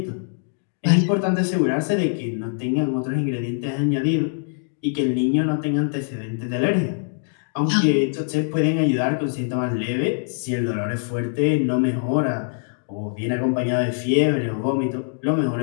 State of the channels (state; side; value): silent; right; digital silence